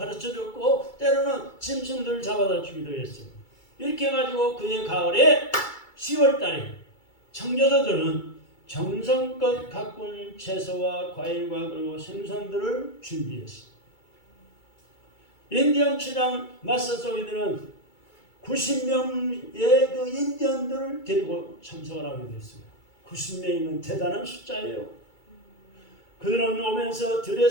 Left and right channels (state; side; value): late; right; 2.3 ms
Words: 때로는 짐승들을 잡아다 주기도 했어요. 이렇게 해가지고 그해 가을에 10월 달에 청교도들은 정성껏 가꾼 채소와 과일과 그리고 생선들을 준비했습니다. 인디언 추장 마사소이드는 90명의 그 인디언들을 데리고 참석을 하게 됐습니다. 90명이면 대단한 숫자예요. 그들은 오면서